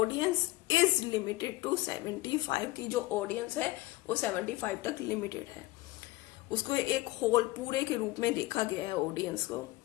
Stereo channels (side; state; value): right; quieter; 19.0 dB